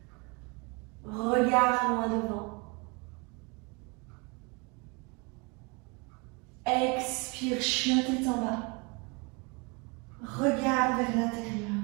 Regard loin devant. Expire, chien tête en bas. Regard vers l'intérieur.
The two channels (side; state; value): left; quieter; 29.9 dB